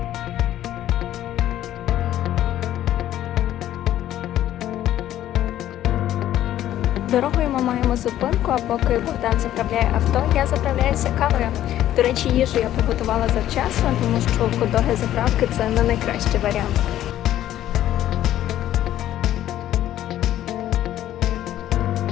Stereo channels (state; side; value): quieter; right; 12.5 dB